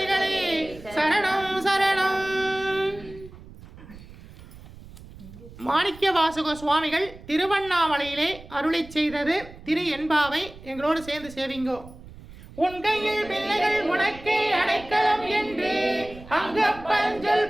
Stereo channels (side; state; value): right; noise; rumble, 18 dB below the sound